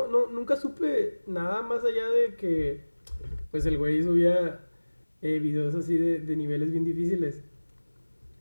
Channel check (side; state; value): both; inverted; correlation -1.00